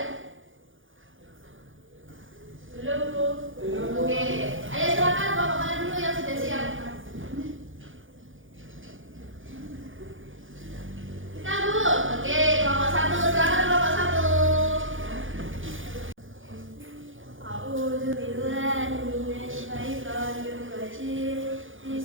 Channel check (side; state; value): left; late; 0.58 ms